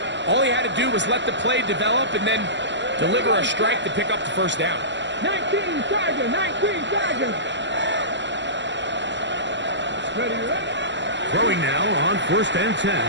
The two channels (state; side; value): late; left; 0.52 ms